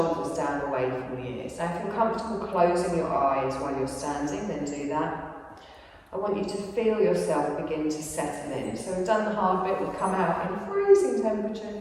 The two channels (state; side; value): identical; both; correlation 1.00